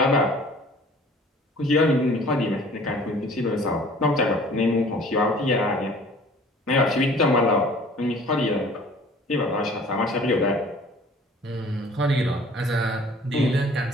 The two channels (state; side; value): normal; both; correlation 0.49